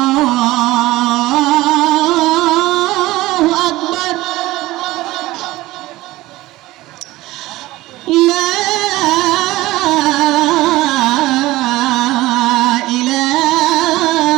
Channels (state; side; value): quieter; left; 18.1 dB